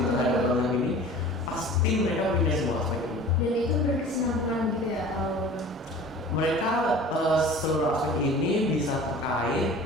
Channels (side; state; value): both; normal; correlation 0.42